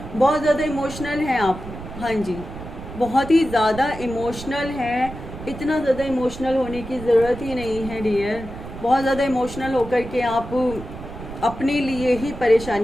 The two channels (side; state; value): right; noise; rumble, 12 dB below the sound